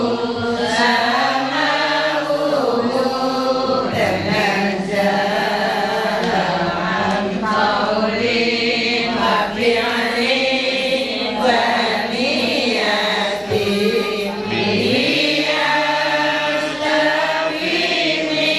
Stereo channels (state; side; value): identical; both; correlation 1.00